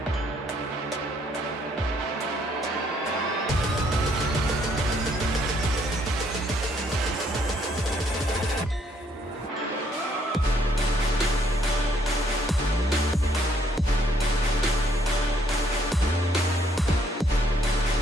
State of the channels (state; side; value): normal; both; correlation 0.68